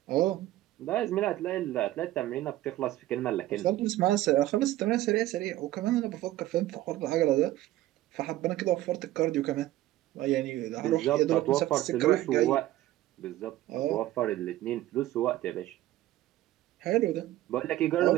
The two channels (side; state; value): left; quieter; 15.1 dB